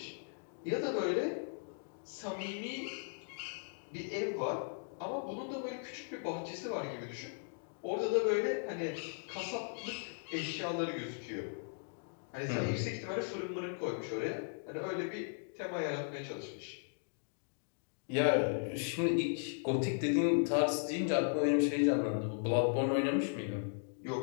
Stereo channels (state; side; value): silent; right; digital silence